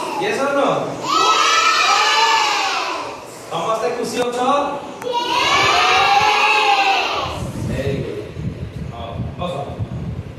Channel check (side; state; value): both; identical; correlation 1.00